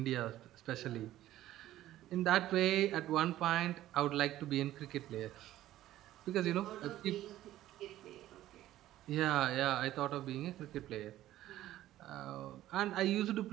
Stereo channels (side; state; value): left; quieter; 14.1 dB